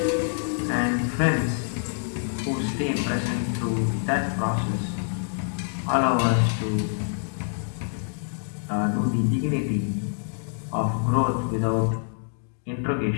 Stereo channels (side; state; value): right; silent; digital silence